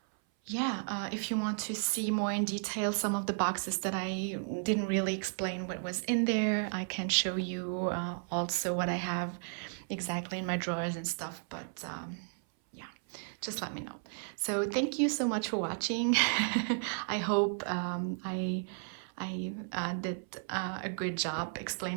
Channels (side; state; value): left; silent; 55 dB below the other